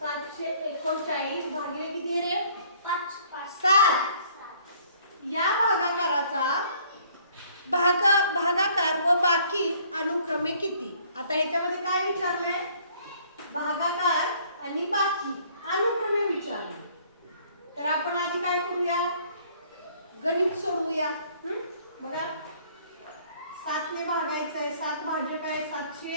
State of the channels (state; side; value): inverted; both; correlation -0.59